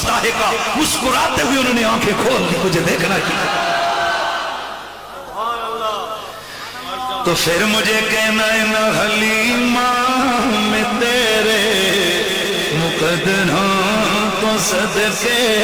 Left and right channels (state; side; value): identical; both; correlation 1.00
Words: ضاحکا، مسکراتے ہوئے انہوں نے آنکھیں کھول لی مجھے دیکھنا کی۔ تو پھر مجھے کہنا ہے نہ حلیمہ میں تیرے مقدروں تو صدقے،